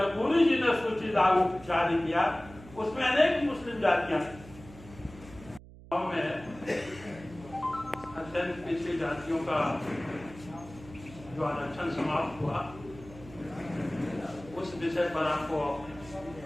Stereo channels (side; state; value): right; noise; hum, 19 dB below the sound